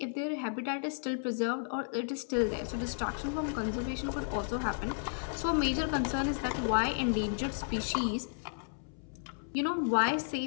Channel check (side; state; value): right; silent; 56 dB below the other